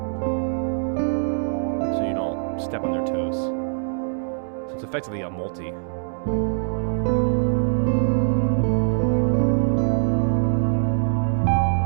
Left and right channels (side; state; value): left; silent; digital silence